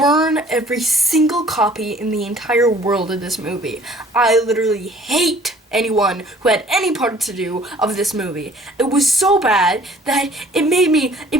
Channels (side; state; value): both; normal; correlation 0.53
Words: every single copy in the entire world of this movie. I literally hate anyone who had any part to do of this movie. It was so bad that it made me